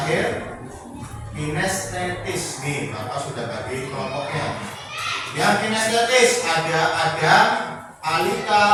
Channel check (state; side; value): identical; both; correlation 1.00